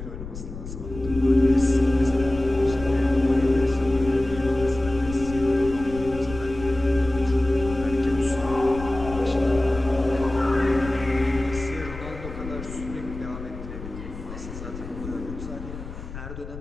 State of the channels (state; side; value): noise; left; rumble, 11 dB below the sound